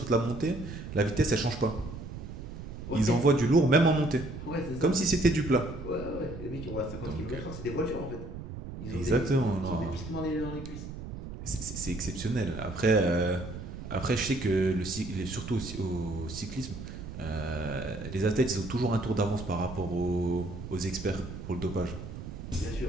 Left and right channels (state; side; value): noise; right; rumble, 10 dB below the sound